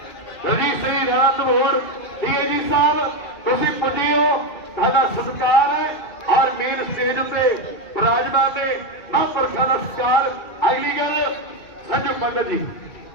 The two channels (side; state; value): right; late; 2.3 ms